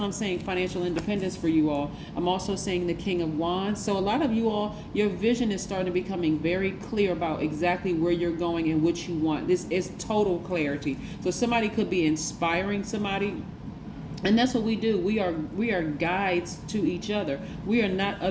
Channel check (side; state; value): both; identical; correlation 1.00